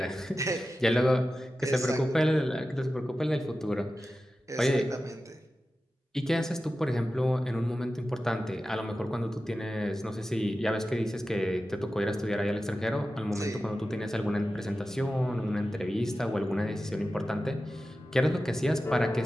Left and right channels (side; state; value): both; normal; correlation 0.93